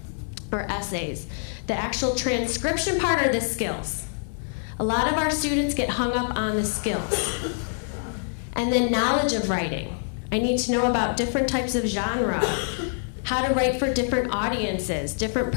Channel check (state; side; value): silent; right; 61 dB below the other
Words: or essays. The actual transcription part are the skills. A lot of our students get hung up on the skills. And then knowledge of writing. I need to know about different types of genre, how to write for different audiences, different